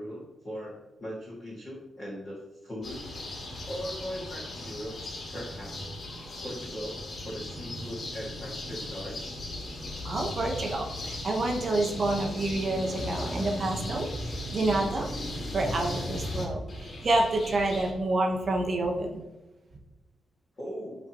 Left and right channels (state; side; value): normal; both; correlation 0.86